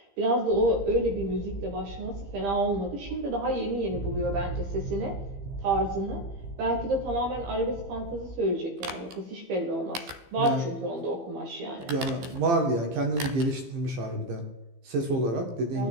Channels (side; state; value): left; late; 15 ms